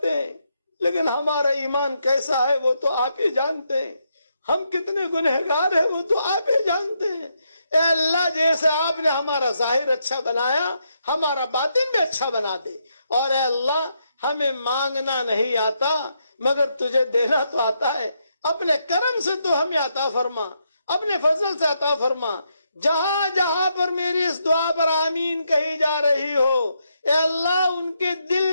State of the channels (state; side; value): inverted; both; correlation -0.79